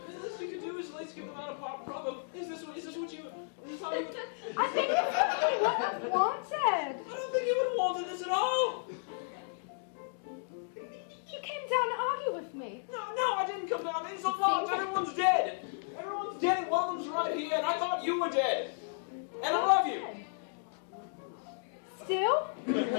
I think it's really what I wanted. I don't think you would want this at all. You came down to argue with me. No, I didn't come down. It's a lot. Everyone's dead. Everyone's dead. One of them's right here, and I thought you were dead. And I love you. Still?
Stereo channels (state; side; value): silent; right; digital silence